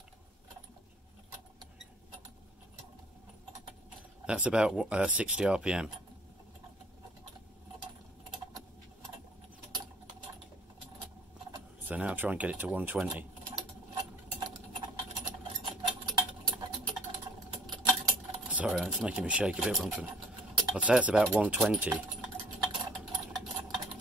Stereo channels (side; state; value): both; normal; correlation 0.55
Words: That's about 60 RPM. So now I'll try and get it to 120. Sorry, it's making me shake a bit. I'd say it's about 120